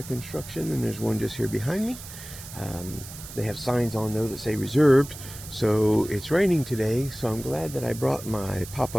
construction, and there's one just here behind me. They have signs on though that say reserved, so it's raining today, so I'm glad that I brought my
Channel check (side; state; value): right; noise; hiss, 14 dB below the sound